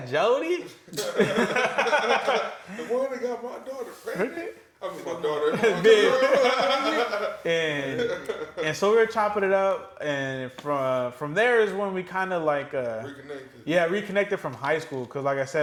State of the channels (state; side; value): identical; both; correlation 1.00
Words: Jody? The one that got my daughter pregnant. I mean, my daughter. and so we were chopping it up, and from there is when we kind of like reconnected from high school. Because like I